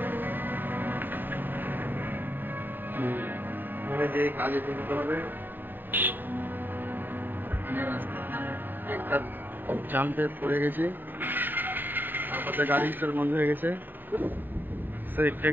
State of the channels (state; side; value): late; left; 0.092 ms